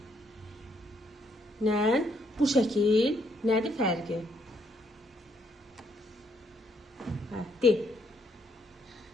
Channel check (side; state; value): both; normal; correlation 0.72